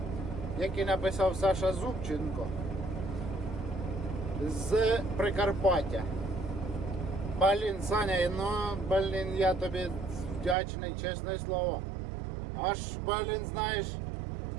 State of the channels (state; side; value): drops out; left; at 10.6 s